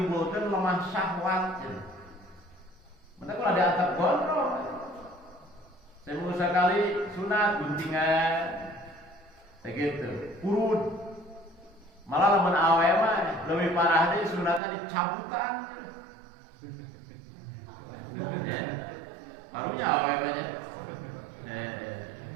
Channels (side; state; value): left; drops out; at 14.6 s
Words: lemah syahwat cenah mata kula diantep gondrong seminggu sekali sunat guntingan begitu kurut malah lamun awe mah leuwih parah deui sunatna dicabutan ya barunya awe mah nya